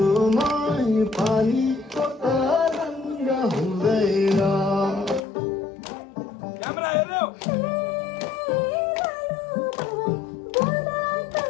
मै पानी को तरंग हुँदैन क्यामेरा हेर्नु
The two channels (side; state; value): right; drops out; at 5.2 s